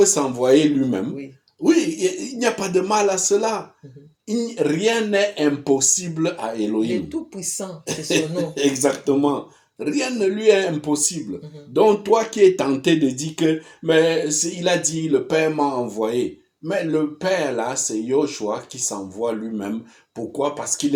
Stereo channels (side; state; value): both; identical; correlation 1.00